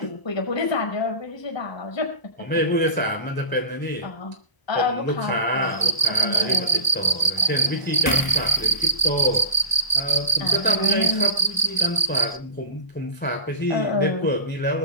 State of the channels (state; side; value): late; right; 1.0 ms